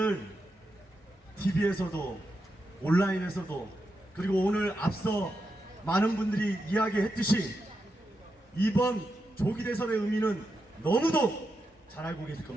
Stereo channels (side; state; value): both; normal; correlation 0.86